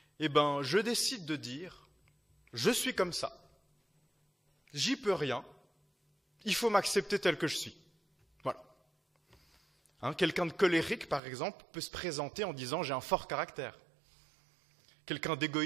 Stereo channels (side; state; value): left; drops out; at 11.2 s